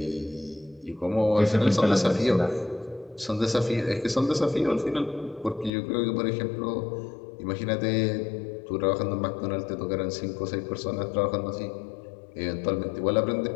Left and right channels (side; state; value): right; drops out; at 5.7 s